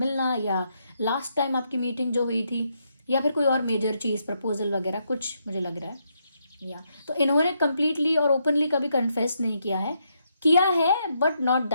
या लास्ट टाइम आपकी मीटिंग जो हुई थी, या फिर कोई और मेजर चीज़, प्रपोजल वगैरह कुछ मुझे लग रहा है। या तो इन्होंने कंप्लीटली और ओपनली कभी कन्फेस नहीं किया है बट नॉट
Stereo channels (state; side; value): inverted; both; correlation -0.78